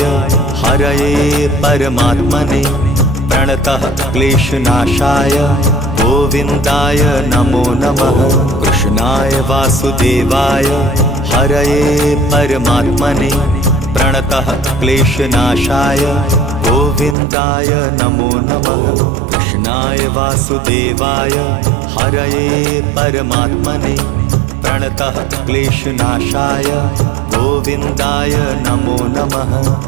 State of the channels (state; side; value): drops out; left; at 17.2 s